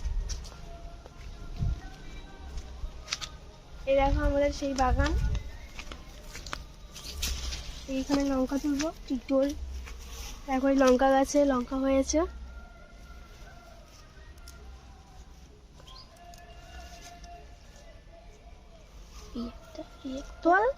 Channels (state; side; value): identical; both; correlation 1.00